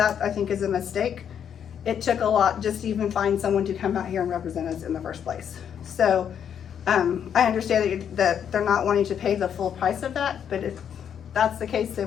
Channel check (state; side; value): quieter; right; 8.5 dB